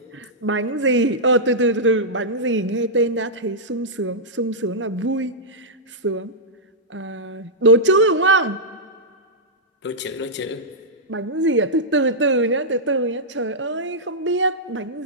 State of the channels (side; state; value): both; normal; correlation -0.11